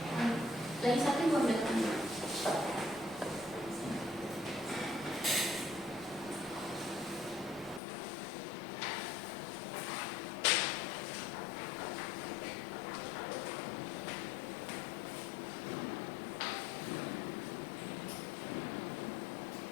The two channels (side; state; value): right; drops out; at 7.8 s